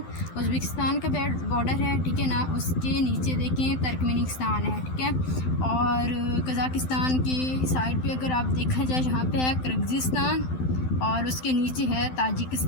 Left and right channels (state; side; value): late; right; 12 ms